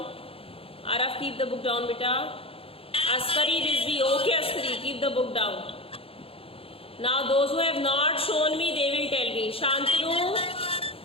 Arav, keep the book down, beta. Askari Rizvi. Okay, Askari, keep the book down. Now, those who have not shown me, they will tell me.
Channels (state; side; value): late; right; 0.27 ms